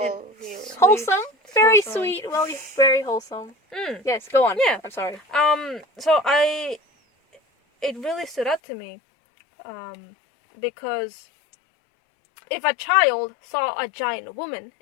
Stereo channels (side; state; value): right; drops out; at 8.6 s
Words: years. Wholesome, very wholesome. sweet, well, very wholesome. Yes, go on. Yeah. I'm sorry. So it really stood out to me, because if a child saw a giant woman,